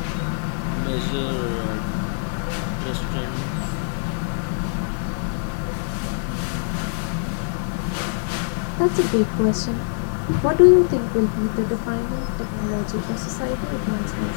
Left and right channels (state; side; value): silent; right; 57 dB below the other